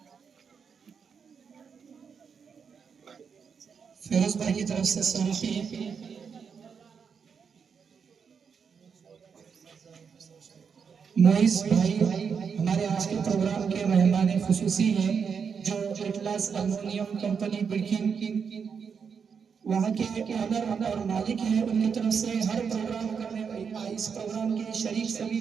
फिरोज भाई की तरफ से 100 रुपये, मोइज भाई हमारे आज के प्रोग्राम के मेहमान खुसूसी हैं, जो एटलास अल्युमिनियम कंपनी बिल्किन वहाँ के ऑनर और मालिक हैं, उनकी तरफ से हर प्रोग्राम करने इस प्रोग्राम के शरीक सभी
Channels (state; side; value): quieter; left; 6.4 dB